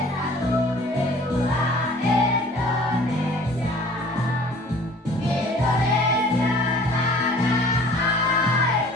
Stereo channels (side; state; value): both; normal; correlation 0.50